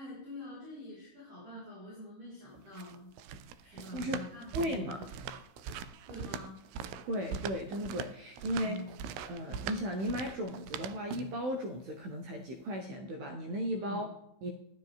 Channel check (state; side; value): late; left; 16 ms